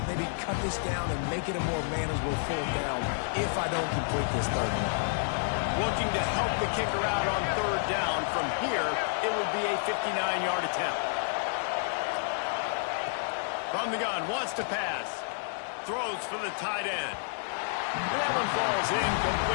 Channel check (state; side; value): silent; right; 56 dB below the other